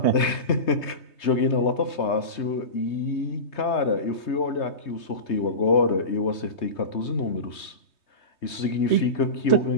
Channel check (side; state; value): right; late; 3.2 ms